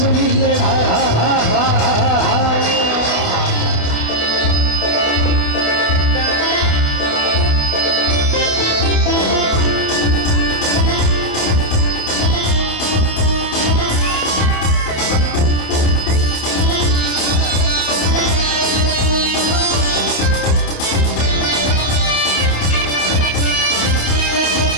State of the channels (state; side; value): late; right; 29 ms